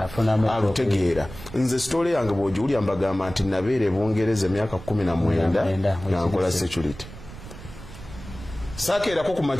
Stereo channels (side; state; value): right; noise; rumble, 14 dB below the sound